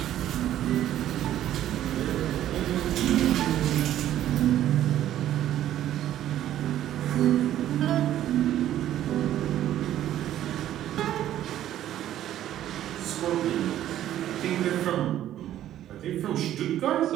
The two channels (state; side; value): quieter; left; 12.2 dB